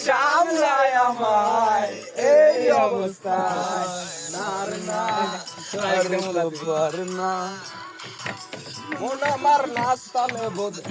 সামলায় আমায় এই অবস্থায় নার না না মন আমার নাস্তালে বোধ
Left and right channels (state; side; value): identical; both; correlation 1.00